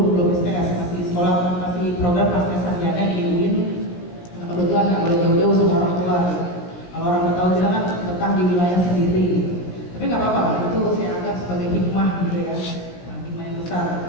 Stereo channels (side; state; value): right; late; 17 ms